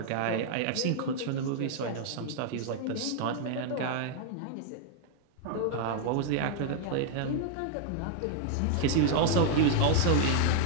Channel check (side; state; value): both; different; correlation 0.00